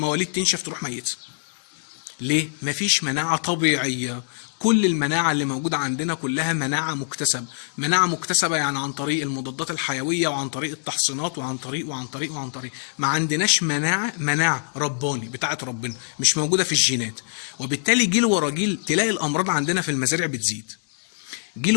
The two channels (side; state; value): right; silent; 63 dB below the other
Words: تنشف تروح ميته. ليه؟ مفيش مناعه طبيعيه. كل المناعه اللي موجوده عندنا كلها مناعه مكتسبه، مناعه مكتسبه يعني عن طريق المضادات الحيويه وعن طريق التحصينات وعن طريق ما عندناش مناعه رباني بتاعه ربنا، مش موجوده في الجينات. وبالتالي جيل ورا جيل تلاقي الامراض عندنا في المزارع بتزيد، جيل